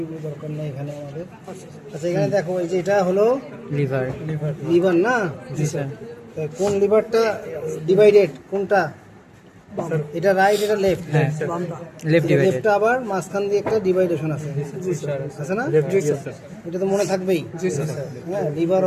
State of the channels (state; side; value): identical; both; correlation 1.00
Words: দরকার নেই এখানে আমাদের। আচ্ছা এখানে দেখো এই যে এটা হলো লিভার লিভার না জি স্যার তা কোন লিভারটা ডিভাইডেড কোনটা এটা রাইট এটা লেফট হ্যাঁ লেফট ডিভাইডেড লেফটটা আবার মাঝখান দিয়ে একটা ডিভাইডেশন আছে আছে না এটা তো মনে থাকবেই হ্যাঁ লিভার